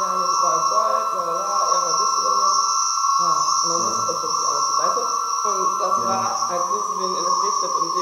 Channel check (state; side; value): identical; both; correlation 1.00